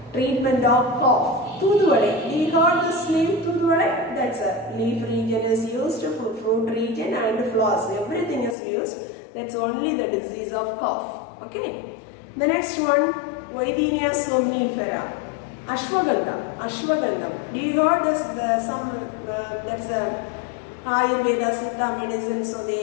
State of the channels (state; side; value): drops out; right; at 8.6 s